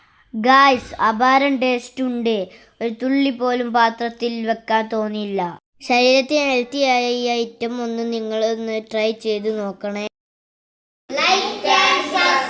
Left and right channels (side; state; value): both; identical; correlation 1.00